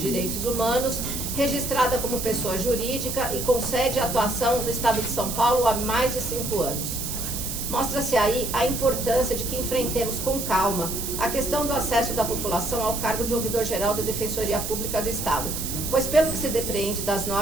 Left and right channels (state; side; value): noise; right; hiss, 5 dB below the sound